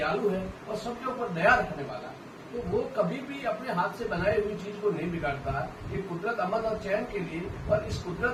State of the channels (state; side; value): identical; both; correlation 1.00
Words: है और सबके ऊपर दया रखने वाला है। तो वो कभी भी अपने हाथ से बनाई हुई चीज को नहीं बिगाड़ता। ये कुदरत अमन और चैन के लिए, और इस